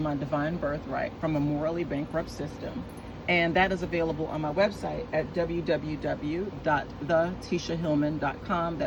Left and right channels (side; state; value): both; identical; correlation 1.00